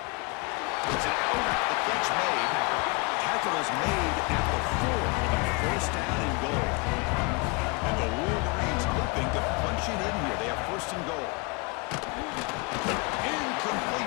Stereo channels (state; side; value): quieter; right; 29.6 dB